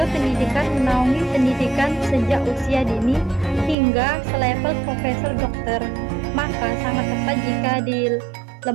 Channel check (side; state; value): left; drops out; at 3.8 s